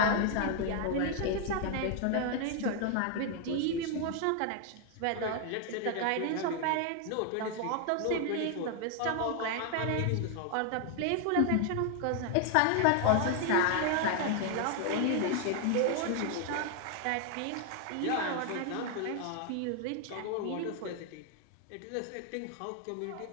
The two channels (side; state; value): both; different; correlation 0.00